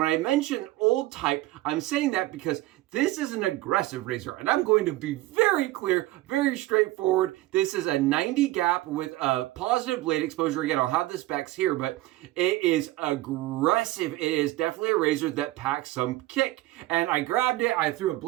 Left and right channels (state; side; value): quieter; left; 17.3 dB